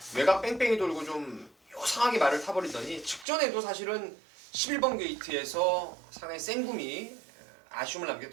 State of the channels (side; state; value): left; drops out; at 3.2 s